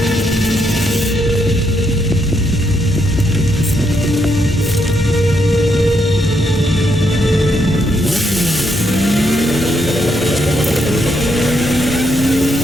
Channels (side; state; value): both; normal; correlation 0.77